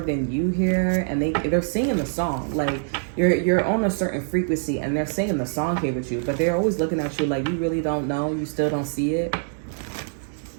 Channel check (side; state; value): left; silent; digital silence